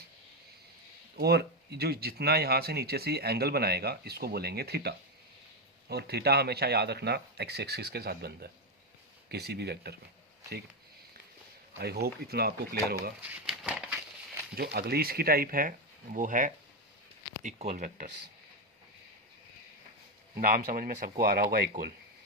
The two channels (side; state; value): both; normal; correlation 0.08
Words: और जो जितना यहाँ से नीचे से एंगल बनाएगा इसको बोलेंगे थीटा। और थीटा हमेशा याद रखना एक्स एक्सिस के साथ बनता है किसी भी वेक्टर में। ठीक, आई होप इतना आपको क्लियर होगा। जो अगली इसकी टाइप है वो है इक्वल वेक्टर्स। नाम समझ में सबको आ रहा होगा, इक्वल।